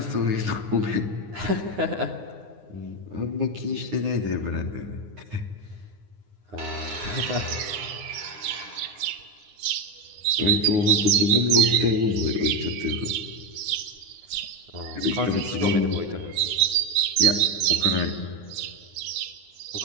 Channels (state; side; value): late; left; 9.7 ms